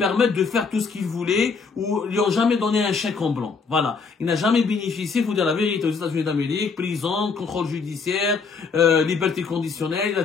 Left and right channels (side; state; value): right; quieter; 5.0 dB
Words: de faire tout ce qu'il voulait, ou lui ont jamais donné un chèque en blanc. Voilà. Il n'a jamais bénéficié, il faut dire la vérité, aux États-Unis d'Amérique, prison, contrôle judiciaire, liberté conditionnelle, il a